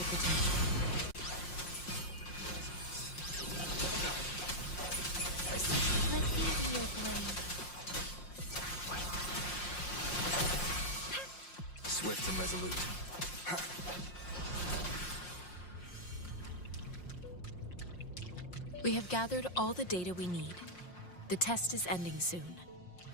potential. I see you. Let me be your blade. Swift and resolute. We have gathered all the data we need. The test is ending soon.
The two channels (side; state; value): right; late; 5.6 ms